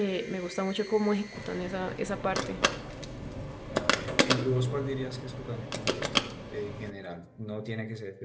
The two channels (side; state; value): both; identical; correlation 1.00